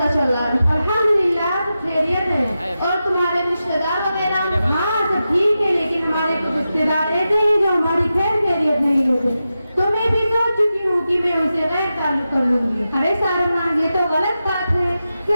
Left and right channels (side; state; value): both; inverted; correlation -0.91